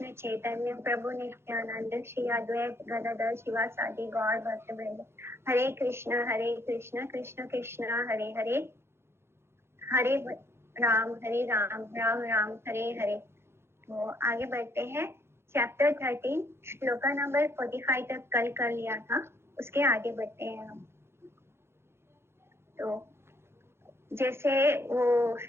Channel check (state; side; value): late; left; 0.12 ms